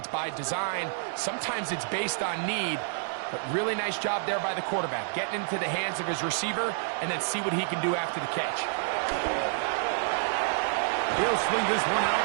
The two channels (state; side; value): silent; left; digital silence